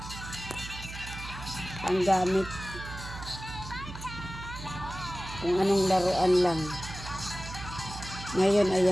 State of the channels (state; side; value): noise; right; hum, 11 dB below the sound